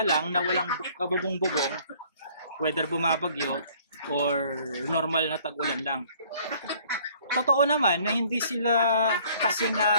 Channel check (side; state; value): both; inverted; correlation -0.57